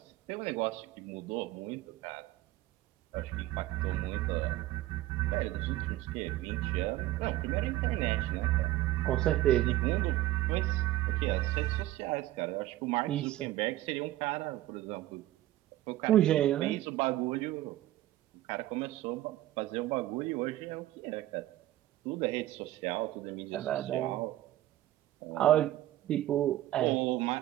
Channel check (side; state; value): left; quieter; 15.0 dB